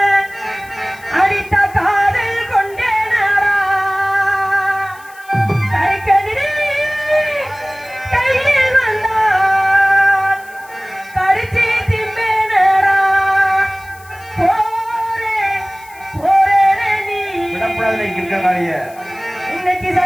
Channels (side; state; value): left; noise; hiss, 24 dB below the sound